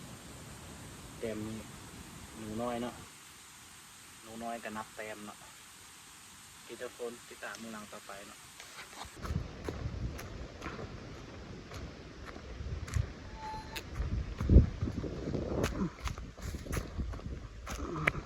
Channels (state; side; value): identical; both; correlation 1.00